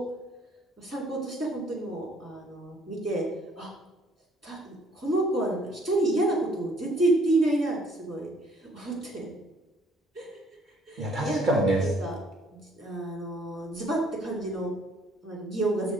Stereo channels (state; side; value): normal; both; correlation 0.62